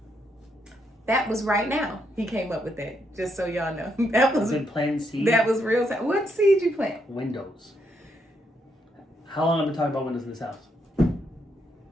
That was right now. He came up with that, just so y'all know. That was been planting seeds. That was real time. What seed you plant? Windows. How long have I been talking about windows in this house?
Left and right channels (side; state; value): both; normal; correlation 0.77